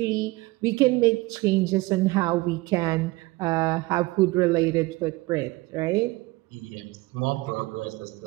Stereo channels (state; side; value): quieter; left; 21.3 dB